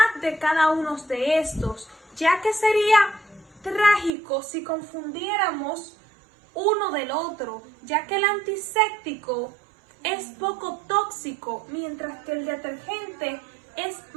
de cada uno de estos, ya que sería trágico si confundiéramos uno del otro, ya que el antiséptico es poco tóxico, mientras que el detergente es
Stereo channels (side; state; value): left; drops out; at 4.1 s